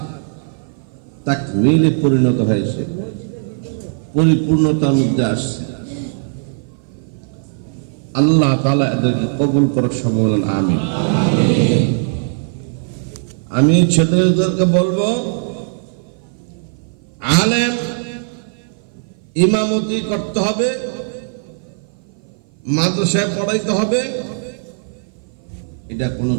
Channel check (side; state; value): left; silent; 56 dB below the other